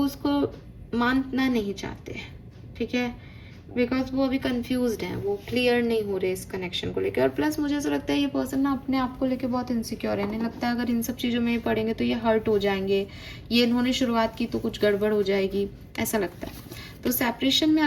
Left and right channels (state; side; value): identical; both; correlation 1.00